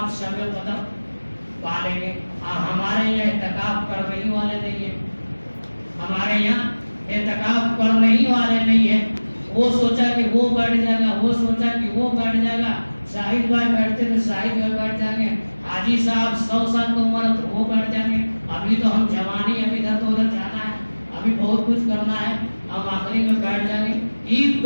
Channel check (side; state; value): both; inverted; correlation -1.00